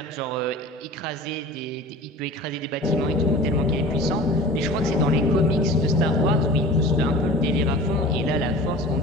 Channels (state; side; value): normal; both; correlation 0.39